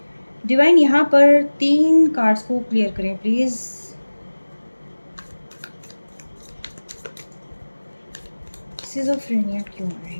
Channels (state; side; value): inverted; both; correlation -1.00